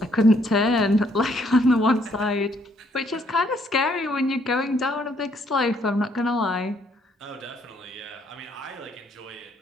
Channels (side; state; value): both; normal; correlation 0.68